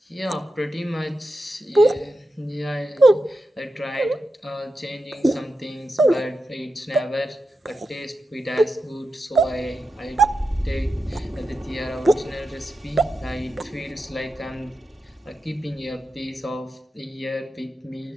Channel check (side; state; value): both; normal; correlation 0.89